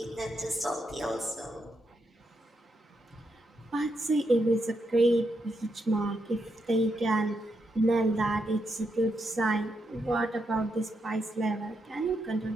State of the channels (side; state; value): both; normal; correlation 0.82